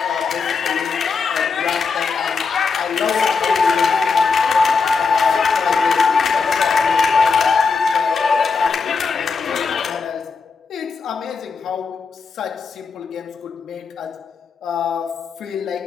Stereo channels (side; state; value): right; quieter; 5.0 dB